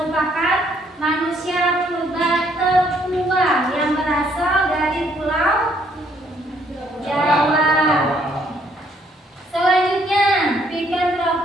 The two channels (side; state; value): both; normal; correlation 0.67